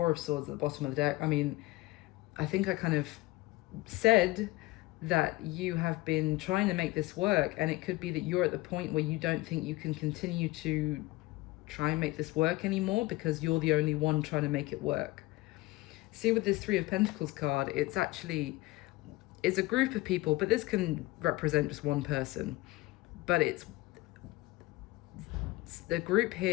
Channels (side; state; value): right; quieter; 20.2 dB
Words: of Swords at the bottom of the deck. I mean, I think I kind of said that you have been trying to make this work, and it could be that you're at the point where you don't think you can continue to try and make this work anymore because you're the only one trying to make it work. See, with this Three of Pentacles card, it's a group of people, but this can represent just one person. But it's the group